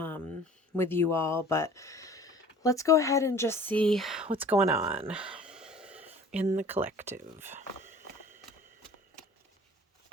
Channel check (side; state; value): both; normal; correlation 0.47